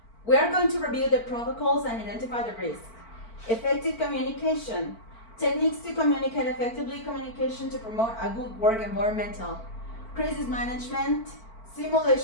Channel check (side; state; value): right; late; 4.5 ms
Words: We are going to review the protocols and identify the risks. Effective communication. Techniques to communicate effectively, communication to promote a good work environment. Crisis management,